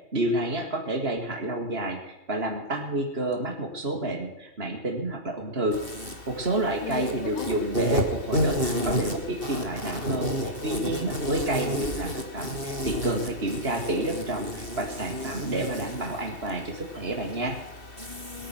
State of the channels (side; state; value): left; late; 2.7 ms